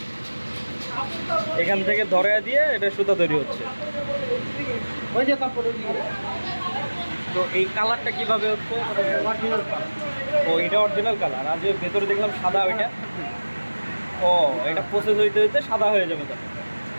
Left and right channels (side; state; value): both; inverted; correlation -1.00